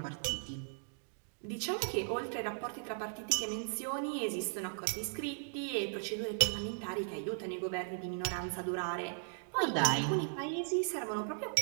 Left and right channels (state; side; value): silent; left; digital silence